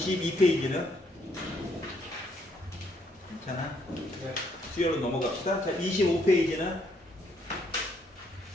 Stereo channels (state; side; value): normal; both; correlation 0.71